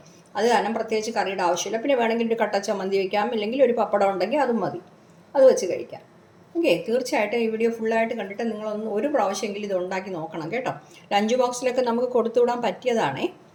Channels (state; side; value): identical; both; correlation 1.00